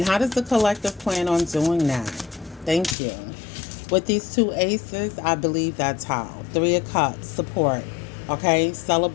how does the collective plan on doing that? Thank you. With these two aces, I believe that's how. Three of Cups, support, okay?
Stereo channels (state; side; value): drops out; right; at 3.0 s